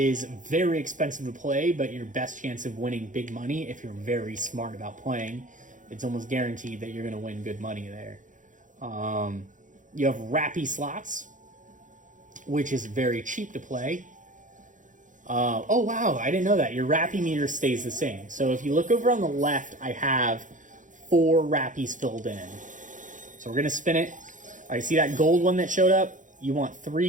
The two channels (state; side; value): late; left; 0.37 ms